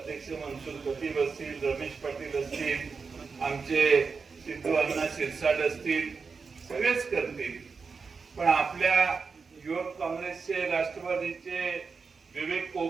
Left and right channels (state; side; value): quieter; left; 5.0 dB